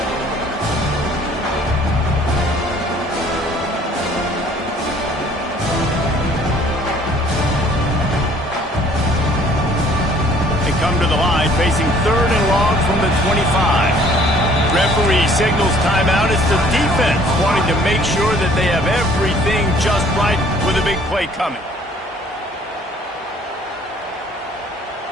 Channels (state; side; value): normal; both; correlation 0.57